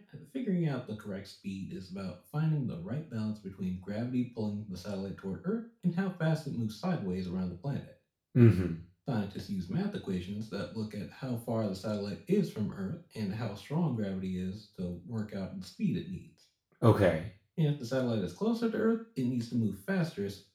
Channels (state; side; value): identical; both; correlation 1.00